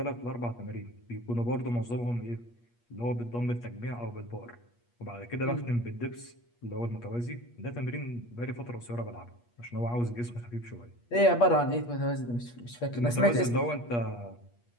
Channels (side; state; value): right; late; 8.4 ms